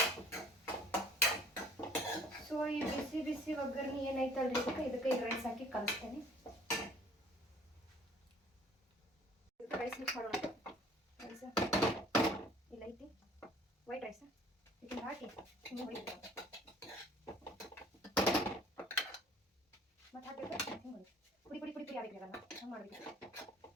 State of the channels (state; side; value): normal; both; correlation 0.53